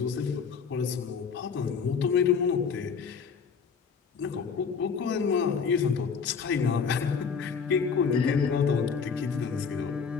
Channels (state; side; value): quieter; right; 6.0 dB